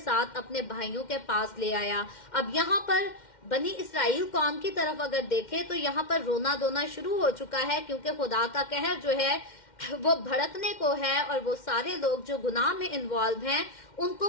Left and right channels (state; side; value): late; right; 2.1 ms